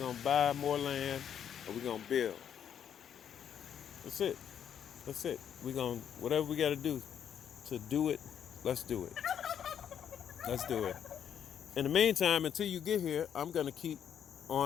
to buy more land and we're going to build. That's it. That's it. We're going to, whatever we got to do it, let's do it. Let's do it. In the meantime, until you get here, I'm going to keep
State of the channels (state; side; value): quieter; right; 8.9 dB